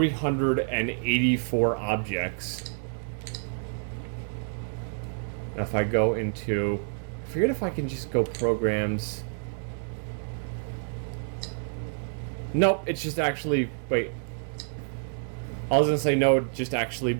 objects. Now if I go into, I forget if I can just go programs. Nope, it's just actually, wait. I was gonna say no, it just actually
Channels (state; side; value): silent; left; digital silence